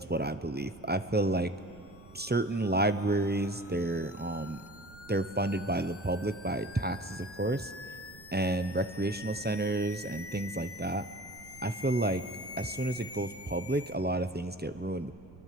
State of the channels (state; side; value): noise; right; rumble, 21 dB below the sound